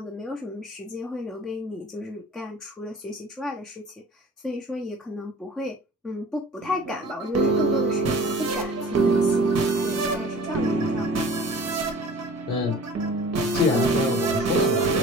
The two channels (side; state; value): both; normal; correlation 0.44